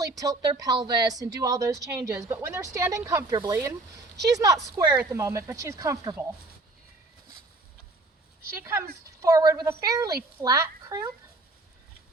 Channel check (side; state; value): left; quieter; 3.1 dB